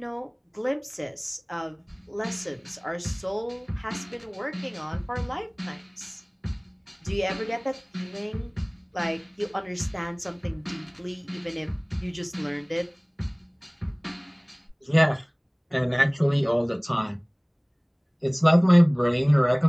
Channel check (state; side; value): identical; both; correlation 1.00